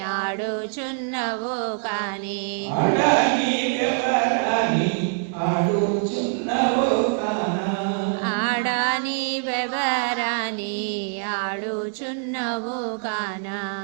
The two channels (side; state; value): left; silent; 63 dB below the other